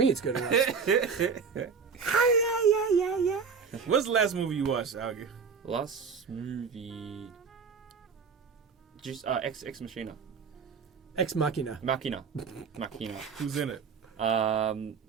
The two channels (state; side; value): quieter; left; 5.7 dB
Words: it's good enough. Yeah. What's the last movie you watched, Aoki? Last movie, just Ex Machina. Ex Machina. Machina. Who's in it?